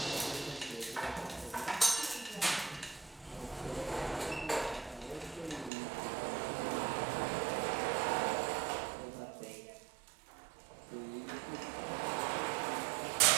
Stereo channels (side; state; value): left; drops out; at 5.7 s